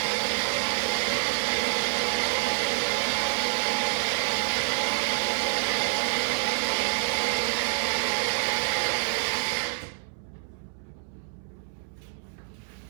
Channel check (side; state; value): left; silent; 60 dB below the other